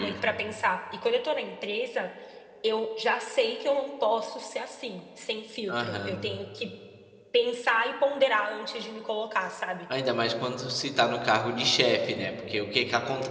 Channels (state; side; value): identical; both; correlation 1.00